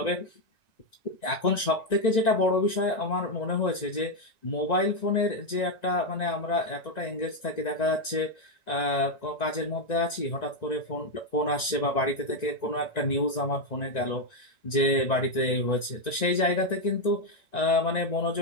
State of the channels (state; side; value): late; right; 1.9 ms